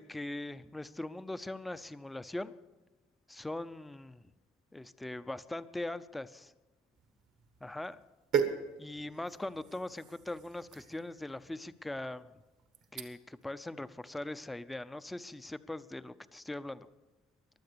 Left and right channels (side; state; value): both; normal; correlation 0.70